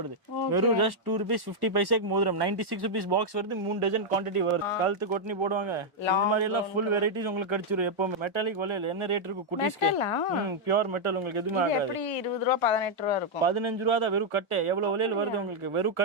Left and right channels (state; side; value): normal; both; correlation -0.02